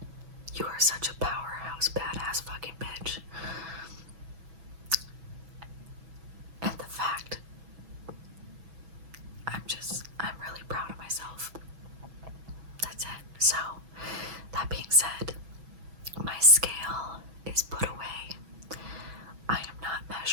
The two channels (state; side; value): late; left; 6.1 ms